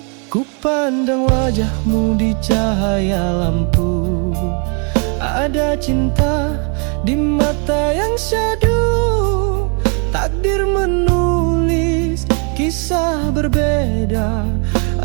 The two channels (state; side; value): quieter; left; 37.6 dB